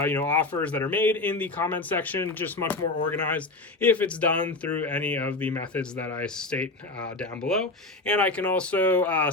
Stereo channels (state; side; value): quieter; right; 3.1 dB